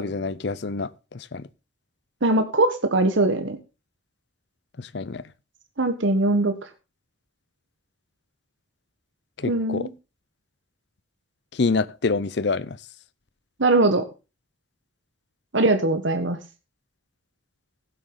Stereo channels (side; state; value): both; normal; correlation 0.03